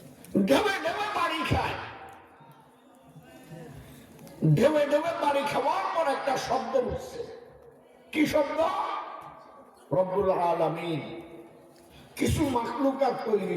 ঢেউে ঢেউে বাড়ি খায়, ঢেউে ঢেউে বাড়ি খাওয়ার পর একটা শব্দ উঠছে। কি শব্দ? রব্বুল আলামিন কিছু মাখলুকাত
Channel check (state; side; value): identical; both; correlation 1.00